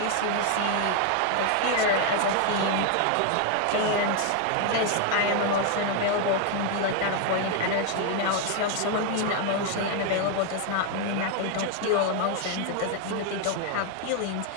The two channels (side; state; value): both; different; correlation 0.01